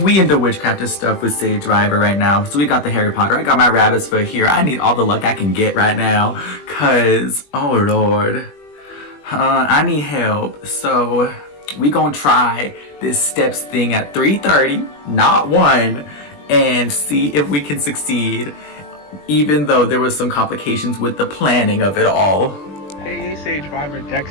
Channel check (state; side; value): late; right; 21 ms